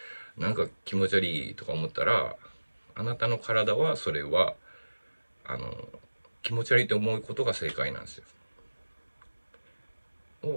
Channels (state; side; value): inverted; both; correlation -1.00